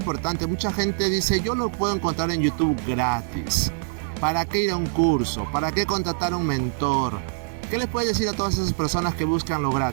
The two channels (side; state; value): left; silent; 62 dB below the other